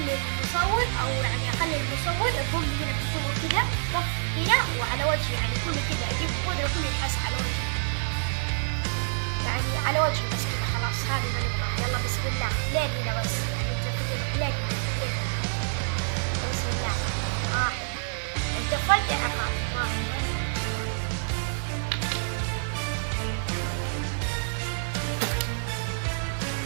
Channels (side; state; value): left; silent; 60 dB below the other